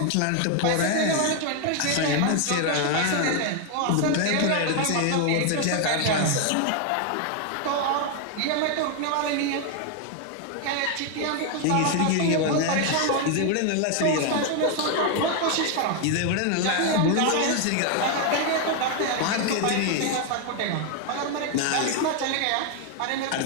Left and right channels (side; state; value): both; different; correlation 0.01